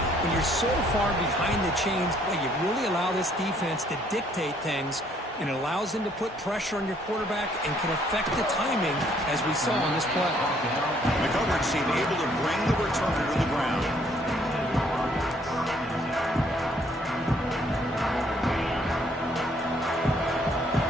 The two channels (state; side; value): normal; both; correlation 0.65